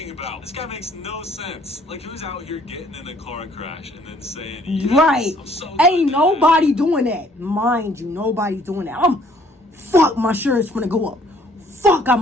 about? This guy makes no sense. Like, who's out here getting in a car crash and then saying, yes, Right. I'm so Ain't good at nobody doing that. Mind you, nobody's doing that. Fuck, my insurance gonna go up. Fuck, I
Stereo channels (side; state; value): both; normal; correlation 0.61